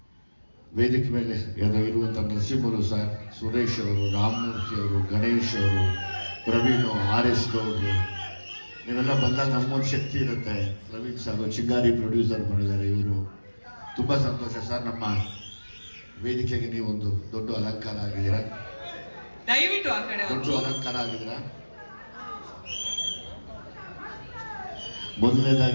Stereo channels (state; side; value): inverted; both; correlation -1.00